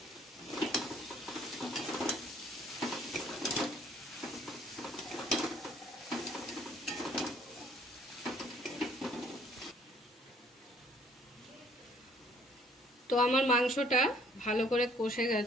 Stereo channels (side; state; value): both; normal; correlation 0.60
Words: তো আমার মাংসটা ভালো করে কষে